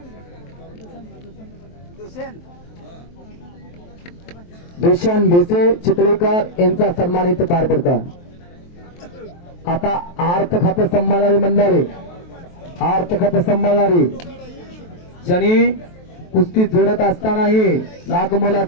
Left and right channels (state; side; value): late; right; 23 ms